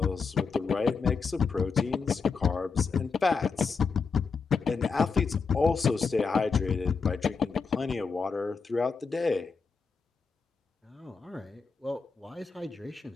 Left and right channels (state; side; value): quieter; right; 5.1 dB